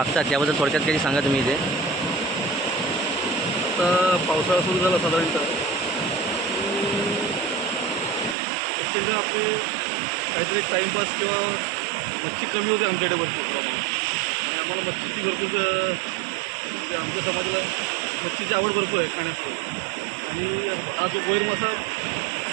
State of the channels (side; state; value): left; drops out; at 8.3 s